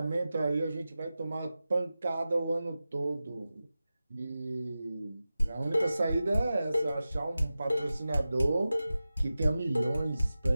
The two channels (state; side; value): inverted; both; correlation -0.94